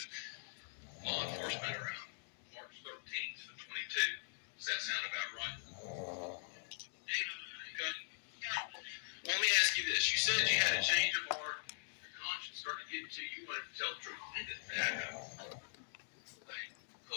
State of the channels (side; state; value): right; silent; digital silence